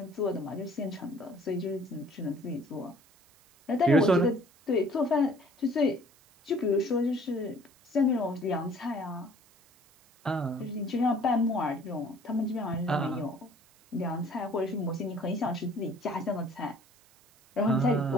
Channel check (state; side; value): noise; right; hiss, 29 dB below the sound